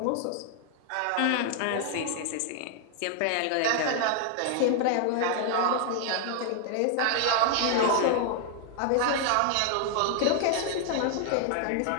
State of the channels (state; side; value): different; both; correlation 0.00